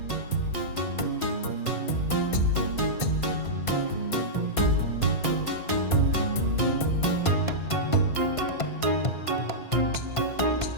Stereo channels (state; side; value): late; right; 1.5 ms